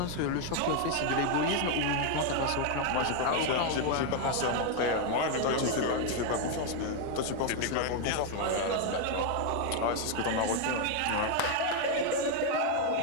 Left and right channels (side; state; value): both; different; correlation 0.01